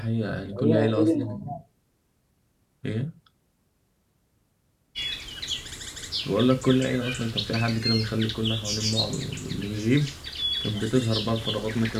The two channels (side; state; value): both; identical; correlation 1.00